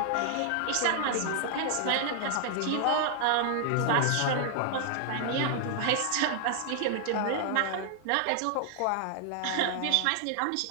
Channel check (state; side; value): different; both; correlation -0.01